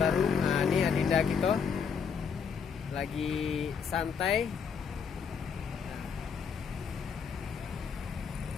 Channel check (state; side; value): quieter; right; 6.4 dB